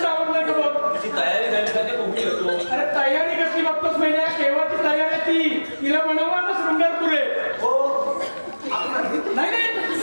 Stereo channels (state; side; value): inverted; both; correlation -1.00